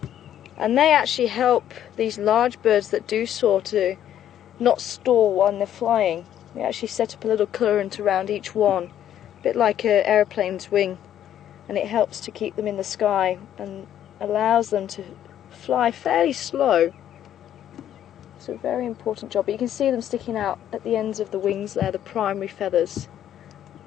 and they actually help these large birds that do soar to not stall when they're flying. They actually set up a little current around each one, a bit like an aeroplane's wing, and it helps to keep them in the sky and allows them to fly fairly slow. It's a very important job. But you can see them sticking out at the ends of the wings there, the primary feathers.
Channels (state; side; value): quieter; right; 10.9 dB